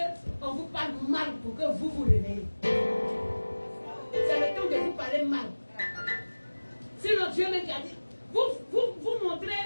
qu'on vous parle mal pour que vous vous réveillez. C'est le temps de vous parler mal. Sinon, Dieu me dit, vous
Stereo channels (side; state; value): both; inverted; correlation -1.00